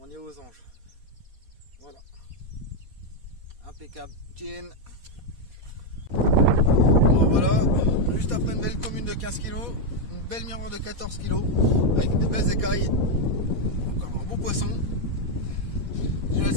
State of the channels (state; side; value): late; left; 4.2 ms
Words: est aux anges. Voilà. Impeccable. Chin. Bon voilà. Juste après une belle commune de 15 kg. Une belle miroir de 14 kg. Avec des belles écailles. Encore un beau poisson. Déjà le